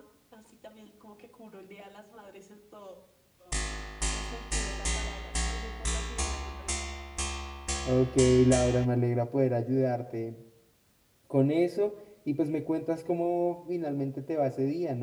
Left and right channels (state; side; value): identical; both; correlation 1.00